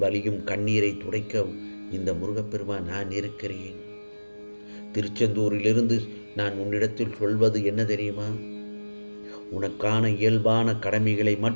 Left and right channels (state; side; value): inverted; both; correlation -1.00